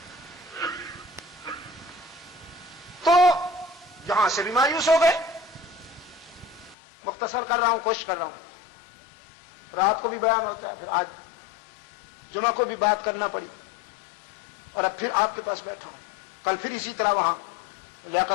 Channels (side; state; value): right; drops out; at 6.8 s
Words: تو یہاں سے بھی مایوس ہو گئے. مختصر کر رہا ہوں، کوشش کر رہا ہوں. رات کو بھی بیان ہوتا ہے، پھر آج جمعہ کو بھی بات کرنا پڑی، اور اب پھر آپ کے پاس بیٹھا ہوں. کل پھر اسی طرح وہاں